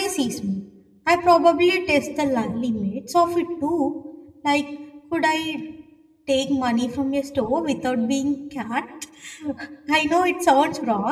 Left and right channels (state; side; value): identical; both; correlation 1.00